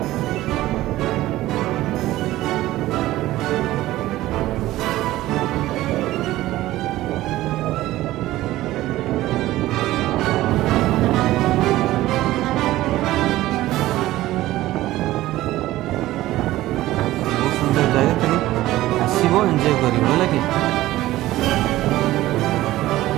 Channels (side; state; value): left; quieter; 16.0 dB